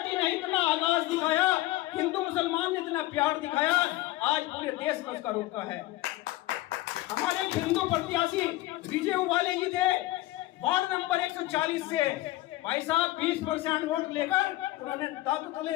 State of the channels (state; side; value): quieter; right; 17.5 dB